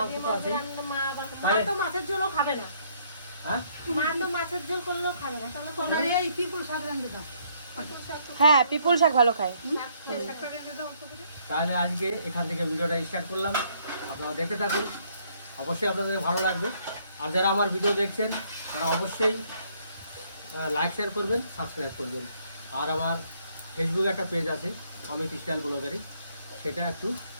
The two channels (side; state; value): both; inverted; correlation -0.67